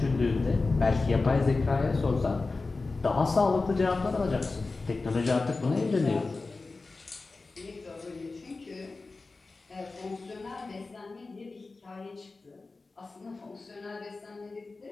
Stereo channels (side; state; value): right; quieter; 3.7 dB